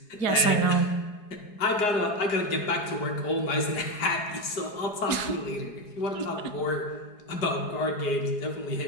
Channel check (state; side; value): late; right; 4.8 ms